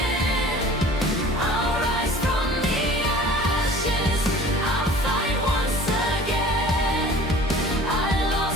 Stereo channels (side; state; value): both; normal; correlation 0.46